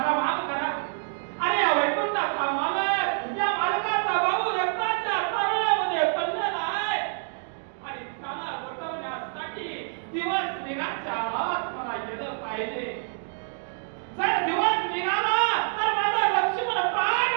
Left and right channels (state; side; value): silent; left; 60 dB below the other